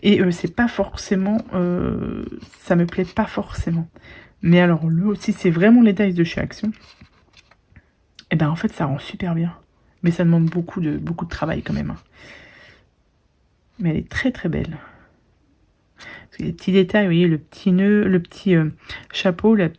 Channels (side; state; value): both; identical; correlation 1.00